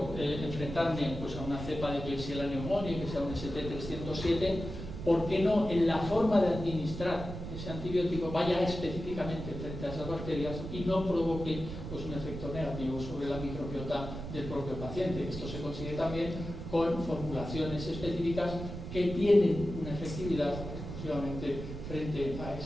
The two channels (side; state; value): right; noise; rumble, 8 dB below the sound